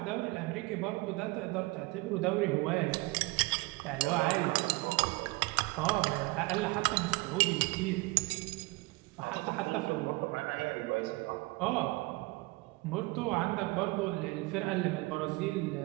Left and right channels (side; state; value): left; quieter; 23.6 dB